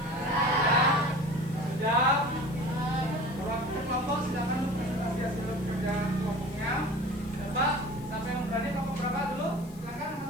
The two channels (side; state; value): left; noise; hiss, 23 dB below the sound